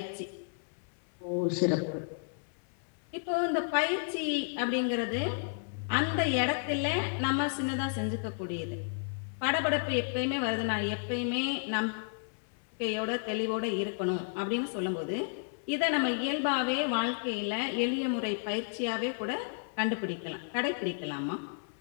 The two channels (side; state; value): right; silent; 56 dB below the other